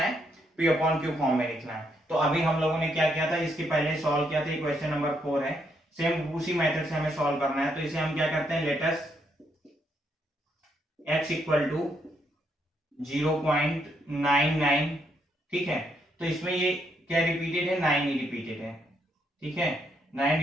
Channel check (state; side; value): normal; both; correlation 0.75